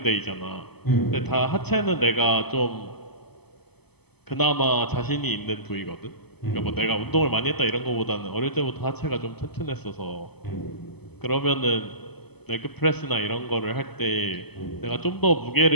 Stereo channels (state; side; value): late; right; 0.98 ms